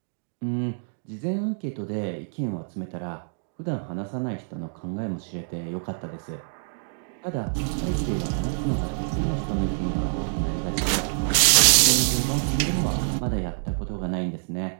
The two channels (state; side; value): silent; left; digital silence